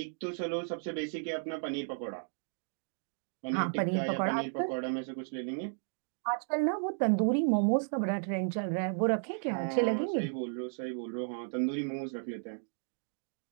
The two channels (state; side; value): silent; left; digital silence